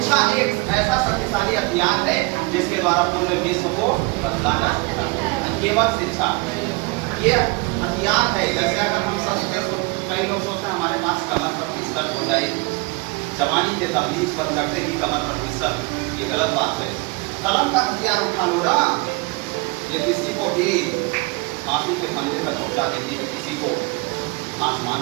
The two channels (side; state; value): left; quieter; 26.7 dB